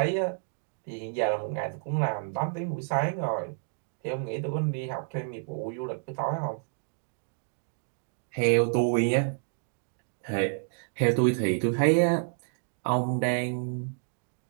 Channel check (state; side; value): silent; left; digital silence